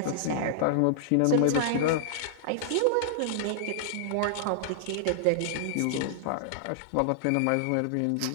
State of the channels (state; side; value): different; both; correlation -0.01